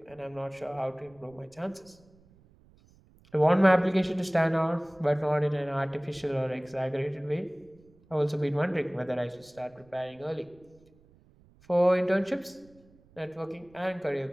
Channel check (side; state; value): right; noise; rumble, 29 dB below the sound